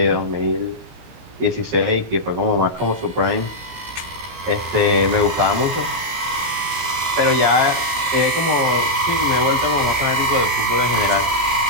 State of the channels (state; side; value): late; left; 17 ms